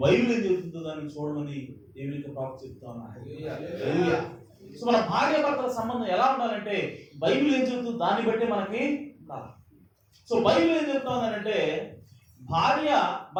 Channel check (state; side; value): identical; both; correlation 1.00